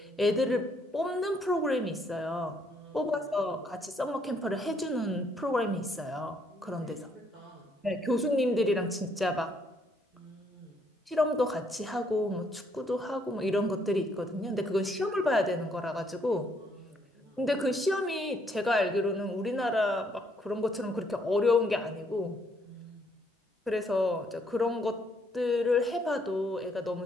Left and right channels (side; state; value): both; normal; correlation 0.70